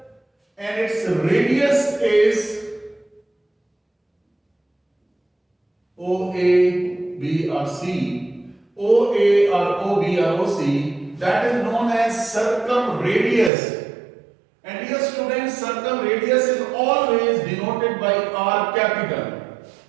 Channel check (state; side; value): drops out; left; at 13.5 s